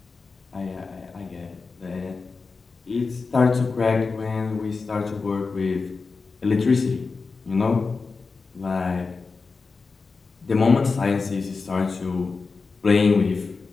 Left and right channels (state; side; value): quieter; right; 4.4 dB